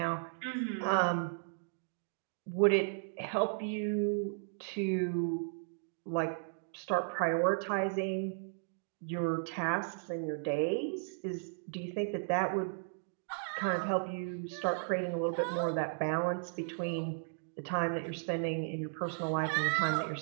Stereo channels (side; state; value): left; silent; digital silence